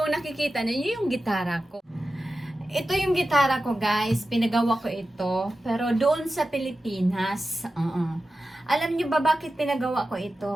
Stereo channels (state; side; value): normal; both; correlation 0.93